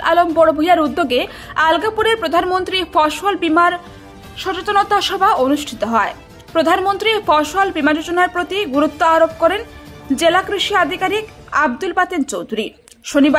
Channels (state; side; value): identical; both; correlation 1.00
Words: আলম বড়ভূইয়ার উদ্যোগে আলগাপুরে প্রধানমন্ত্রী ফসল বীমার সচেতনতা সভা অনুষ্ঠিত হয়। প্রধানমন্ত্রী ফসল বীমা যোজনার প্রতি গুরুত্ব আরোপ করেন জেলা কৃষি আধিকারিক আব্দুল বাতেন চৌধুরী।